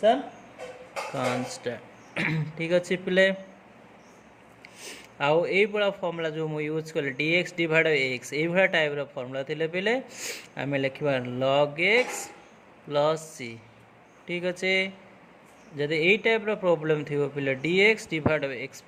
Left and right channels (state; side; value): identical; both; correlation 1.00